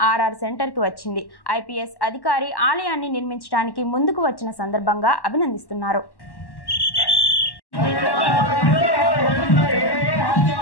ఆర్ఆర్ సెంటర్కి వచ్చింది. ఐపీఎస్ అధికారి ఆలయాన్ని నిర్మించడానికి ముందుకు వచ్చిన సందర్భంగా అభినందిస్తున్నారు.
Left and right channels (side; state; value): right; late; 1.1 ms